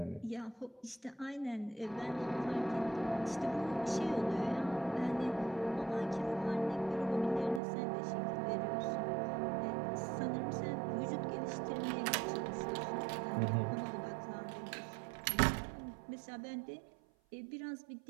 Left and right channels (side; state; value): left; drops out; at 7.6 s